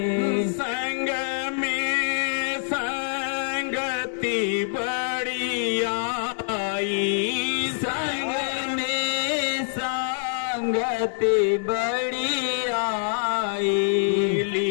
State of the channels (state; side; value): silent; right; digital silence